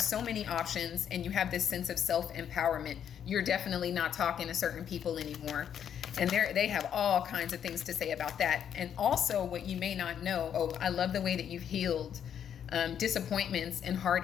many options, and you have this sense of self-empowerment. You're definitely not talking to certain people anymore, and they have all kinds of things to say about that. And also, what you may not know, I love the way that you've healed disappointments and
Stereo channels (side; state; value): right; quieter; 8.9 dB